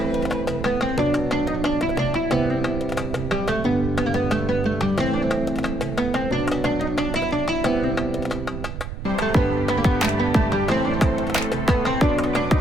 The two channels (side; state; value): right; noise; rumble, 6 dB below the sound